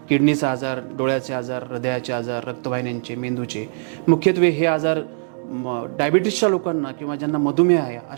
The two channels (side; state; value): left; silent; digital silence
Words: किडनीचा आजार, डोळ्याचे आजार, हृदयाचे आजार, रक्तवाहिन्यांचे, मेंदूचे, मुख्यत्वे हे आजार डायबिटीसच्या लोकांना किंवा ज्यांना मधुमेह आहे